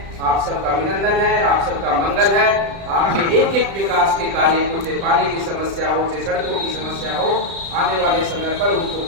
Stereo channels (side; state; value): left; late; 35 ms